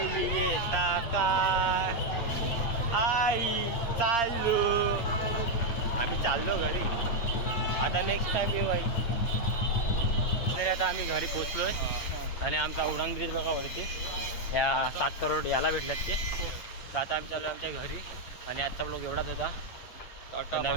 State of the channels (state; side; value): late; right; 8.6 ms